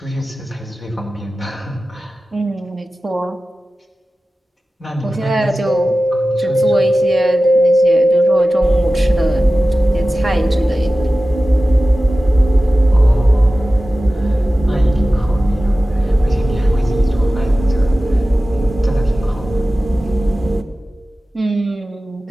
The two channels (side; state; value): both; normal; correlation 0.95